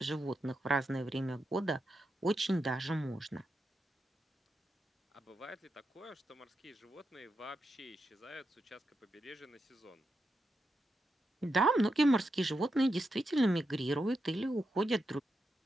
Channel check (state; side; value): normal; both; correlation 0.86